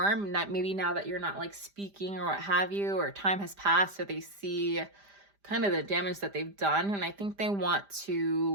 Maybe now that you're not like speaking or what have you, or time has passed, so they see kind of the damage that they've done. And I think they want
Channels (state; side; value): late; left; 5.0 ms